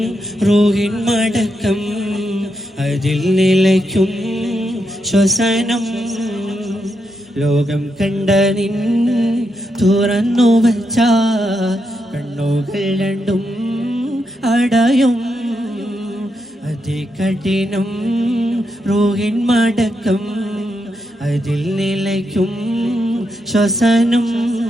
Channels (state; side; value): normal; both; correlation 0.82